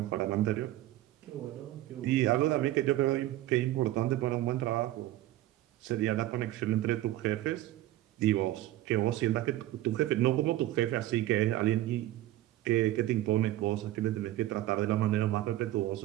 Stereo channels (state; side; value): quieter; left; 14.9 dB